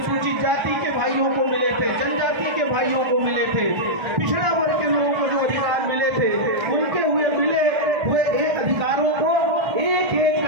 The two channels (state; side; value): late; left; 1.3 ms